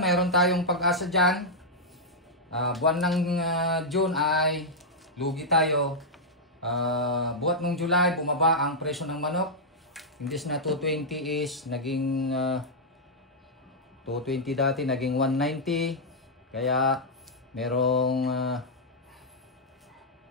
tayong pag-asa dyan. Buwan ng June ay lugi tayo. Buwan ng July, bumaba ang presyo ng manok. Imbis na 220 is naging 220 dati, naging 190. Kaya merong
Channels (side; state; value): both; normal; correlation -0.06